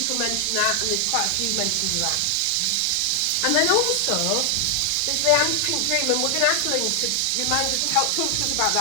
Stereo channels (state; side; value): different; both; correlation 0.00